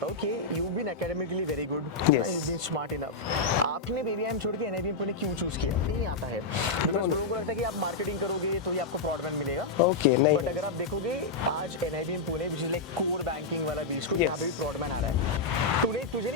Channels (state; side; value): quieter; right; 3.8 dB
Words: हूँ कि you been academically very good, you been smart enough, आपने बीबीआईएम छोड़ के एनआईबीएम पुणे क्यों चूज किया? नहीं आता है बिकॉज लोगों को लगता है कि आप मार्केटिंग करोगे तो ही आपको प्रॉडमैन मिलेगा। ओके, नहीं, बट अगर आप देखोगे आज NIBM Pune which is like core banking वाला बीच को यहाँ पे भी प्रॉडमैन आ रहा है। तुझे